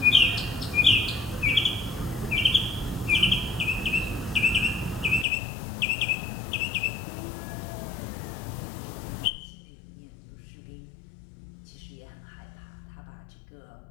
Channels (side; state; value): right; drops out; at 5.2 s